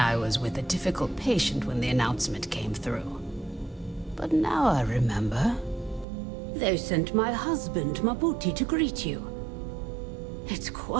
was with a difficult patient when the announcement came through. But now I remember. They sent my husband, Mabuti, to greet you. It's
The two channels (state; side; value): drops out; left; at 6.1 s